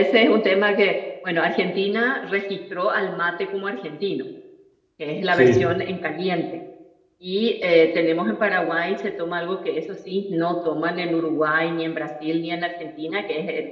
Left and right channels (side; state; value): both; identical; correlation 1.00